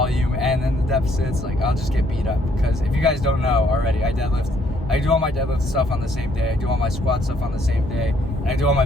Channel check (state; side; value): normal; both; correlation 0.67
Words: and then the deficits. Like, I'll just get beat up, because if you guys don't know already, I do all my deadlift stuff on the same day. I do all my squat stuff on the same day, and I do all my